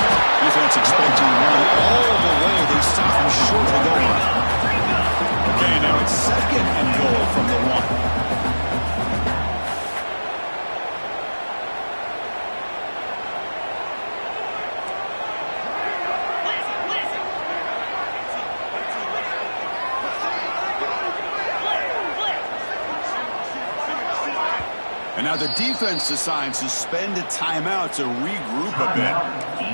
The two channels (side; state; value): both; inverted; correlation -1.00